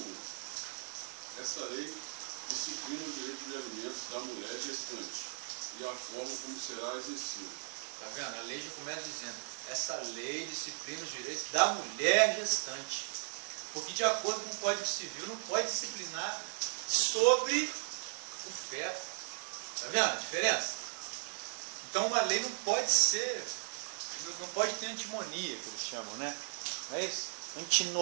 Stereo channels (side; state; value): left; silent; digital silence